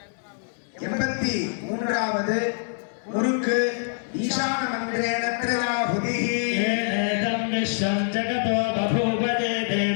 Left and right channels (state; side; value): silent; right; 62 dB below the other